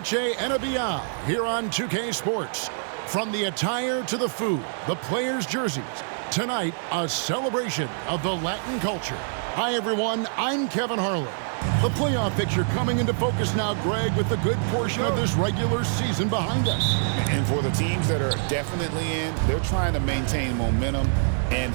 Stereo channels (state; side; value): silent; left; 61 dB below the other